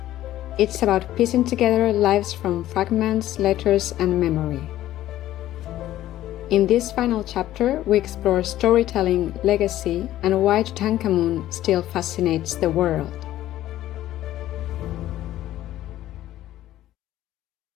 It's about piecing together lives from fragments, letters, and memory. In this final chapter, we explore storytelling, legacy, and why Tutankhamun still fascinates the world.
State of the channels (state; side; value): quieter; right; 13.8 dB